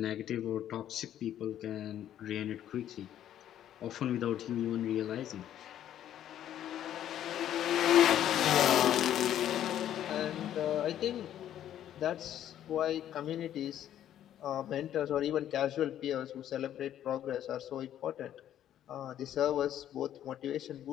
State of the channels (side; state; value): right; quieter; 11.2 dB